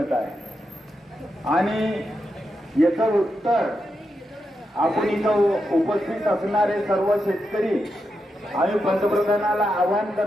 आहे. आणि याचं उत्तर आपण इथं उपस्थित असणारे सर्व शेतकरी आम्ही पंतप्रधानाला आवाहन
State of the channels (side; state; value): both; normal; correlation 0.86